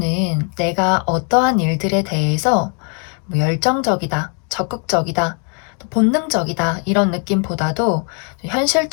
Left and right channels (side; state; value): right; quieter; 39.7 dB